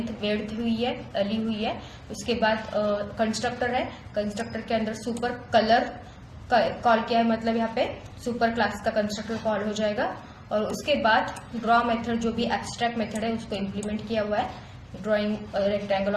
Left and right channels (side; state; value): both; identical; correlation 1.00